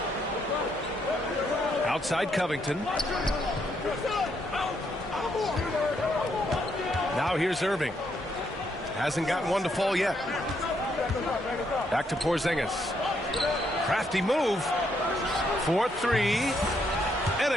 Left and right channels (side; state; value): both; normal; correlation 0.75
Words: Outside Covington. Now here's Irving. Hasn't gotten one to fall yet. Back to Porzingis. Crafty move. 4-3. And